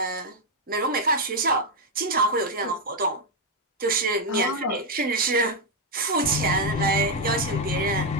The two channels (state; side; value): normal; both; correlation 0.01